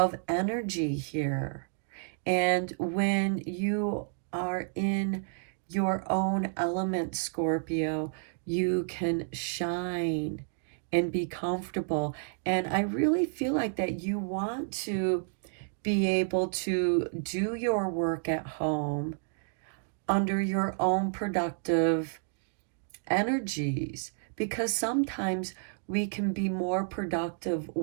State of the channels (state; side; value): silent; left; digital silence